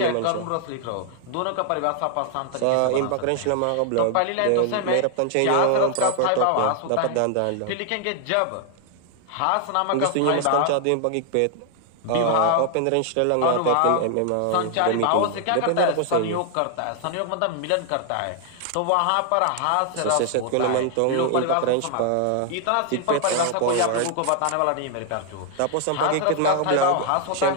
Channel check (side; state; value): both; different; correlation 0.00